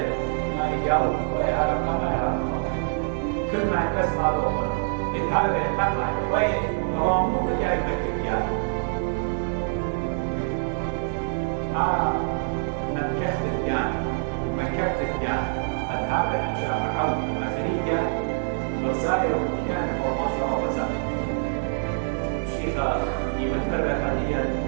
ما يجاوب ويا رقم كل ما يتسمع له هذا يتبع وين رامو بجاي مكتب يعني مكتب يعني مكتب يعني هذا أشياء عود أفريقيا وسائر كان هو ما شاء الله وزاد الشيخة يمثل حاليا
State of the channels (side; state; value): left; silent; 61 dB below the other